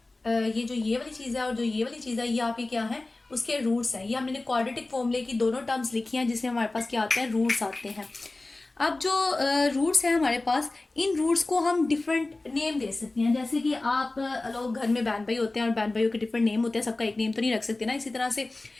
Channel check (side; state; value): right; quieter; 3.1 dB